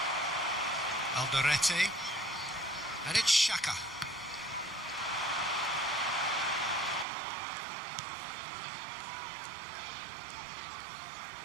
Alderete. And it's Xhaka.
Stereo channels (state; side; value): drops out; left; at 7.1 s